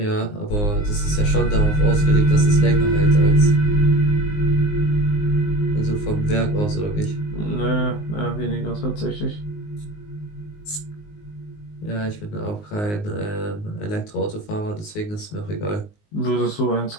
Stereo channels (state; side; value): late; right; 19 ms